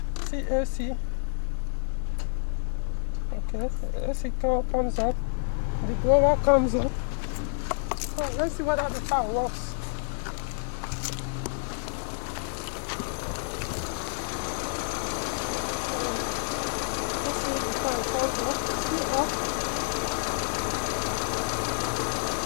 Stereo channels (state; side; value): silent; right; digital silence